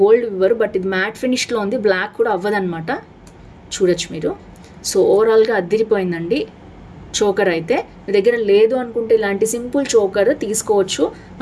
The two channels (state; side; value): identical; both; correlation 1.00